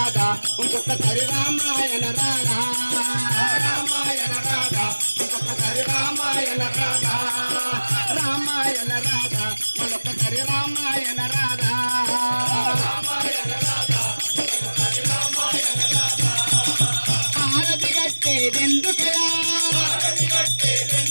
ఇంకొకసారి రామాయణ రాధ రామాయణ రాధ ఇంకొకసారి రామాయణ రాధ రామాయణ రాధ మరొకసారి రామాయణ రాధ రామాయణ రాధ హారతి కట్టేదెందుకయా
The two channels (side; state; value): both; inverted; correlation -1.00